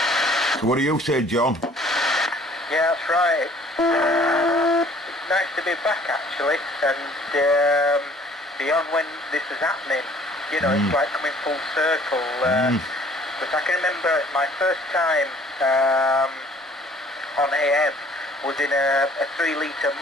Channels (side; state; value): both; normal; correlation 0.55